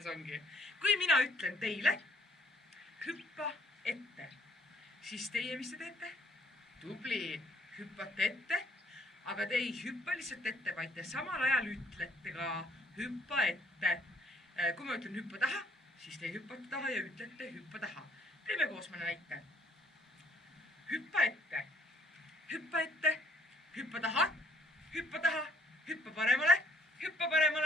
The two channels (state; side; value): normal; both; correlation 0.61